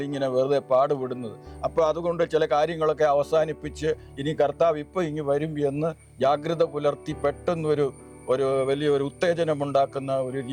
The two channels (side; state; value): both; identical; correlation 1.00